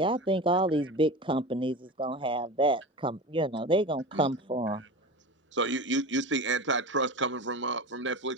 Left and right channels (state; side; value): normal; both; correlation 0.29